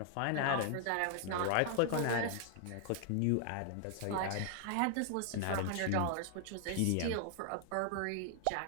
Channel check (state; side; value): different; both; correlation 0.00